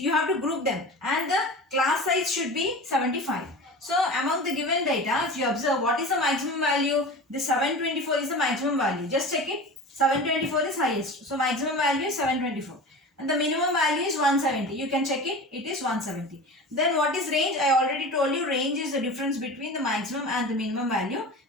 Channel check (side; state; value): both; normal; correlation 0.33